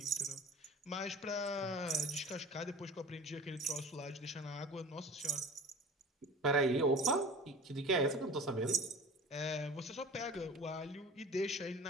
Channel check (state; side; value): normal; both; correlation 0.40